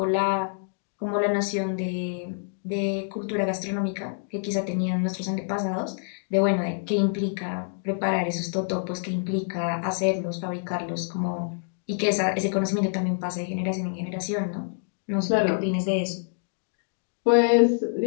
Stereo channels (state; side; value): silent; right; digital silence